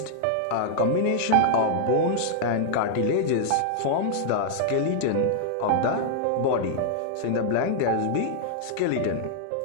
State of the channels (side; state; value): both; different; correlation -0.01